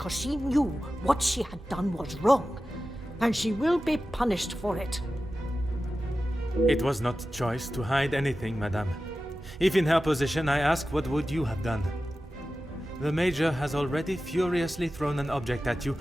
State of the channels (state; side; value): normal; both; correlation 0.94